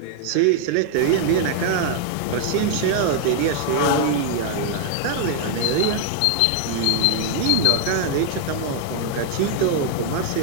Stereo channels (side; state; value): both; different; correlation 0.00